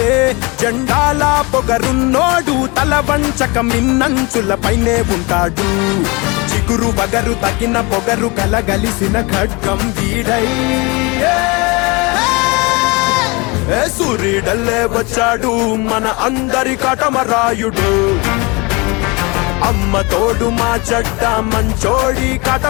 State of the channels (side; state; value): right; quieter; 26.9 dB